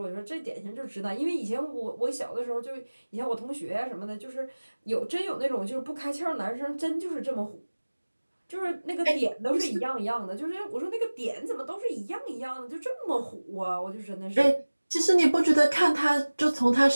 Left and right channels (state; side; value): inverted; both; correlation -1.00